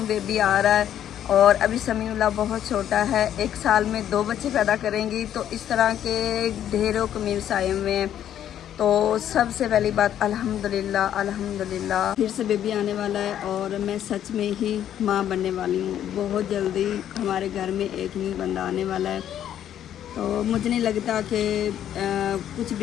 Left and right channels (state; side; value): quieter; right; 10.5 dB